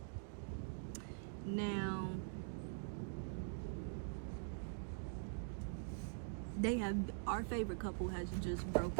Now, our favorite couple has just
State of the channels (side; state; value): left; silent; digital silence